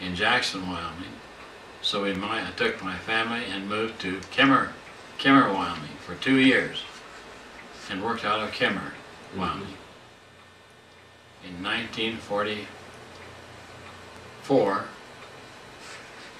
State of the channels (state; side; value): identical; both; correlation 1.00